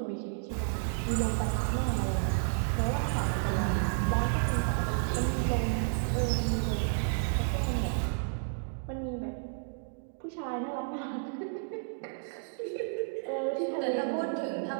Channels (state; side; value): silent; left; digital silence